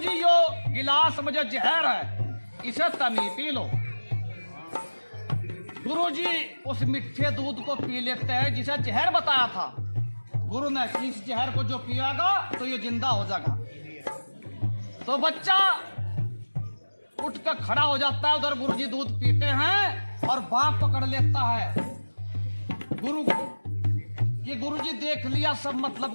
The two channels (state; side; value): inverted; both; correlation -1.00